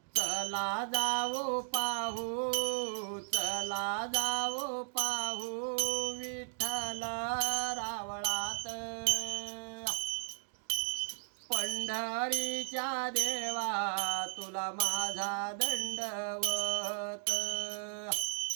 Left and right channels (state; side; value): silent; left; digital silence